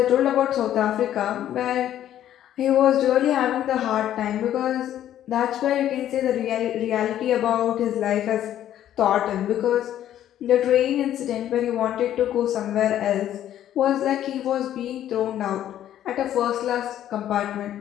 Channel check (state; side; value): quieter; right; 11.5 dB